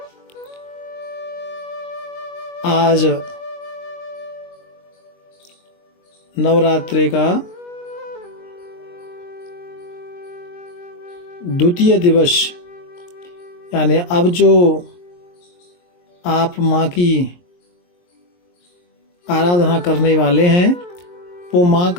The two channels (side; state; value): right; late; 23 ms